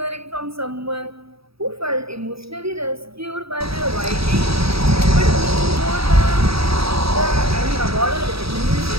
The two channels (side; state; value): left; late; 0.77 ms